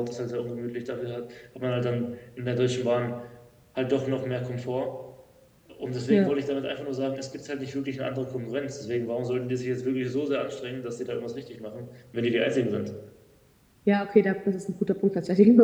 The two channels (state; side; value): identical; both; correlation 1.00